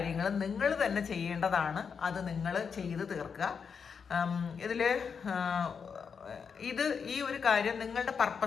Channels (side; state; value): right; quieter; 6.2 dB